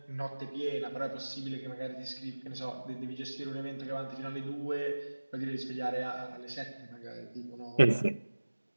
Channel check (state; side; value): inverted; both; correlation -1.00